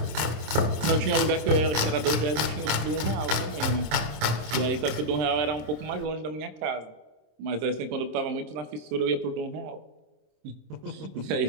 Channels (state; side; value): late; left; 26 ms